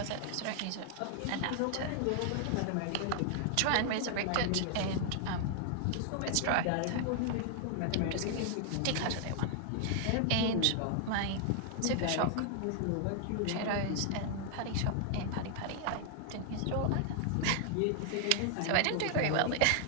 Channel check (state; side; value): different; both; correlation 0.00